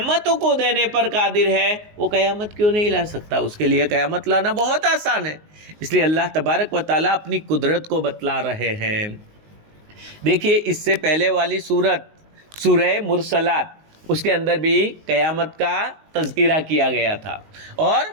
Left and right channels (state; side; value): late; left; 19 ms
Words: کو دینے پر قادر ہے، وہ قیامت کیوں نہیں لا سکتا؟ اس کے لیے قیامت لانا بہت آسان ہے۔ اس لیے اللہ تبارک و تعالیٰ اپنی قدرت کو بتلا رہے ہیں۔ دیکھیے اس سے پہلے والی سورہ مرسلات، اس کے اندر بھی قیامت کا تذکرہ کیا گیا تھا، اور